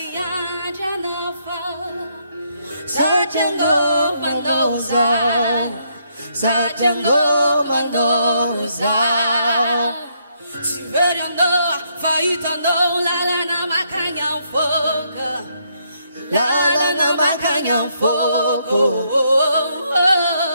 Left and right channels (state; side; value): inverted; both; correlation -0.74